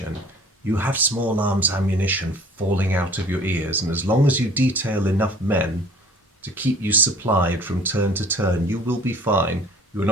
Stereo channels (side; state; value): both; normal; correlation 0.49